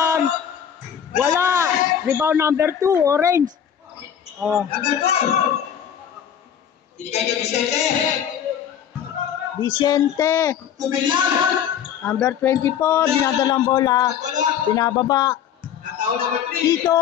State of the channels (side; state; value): right; quieter; 9.0 dB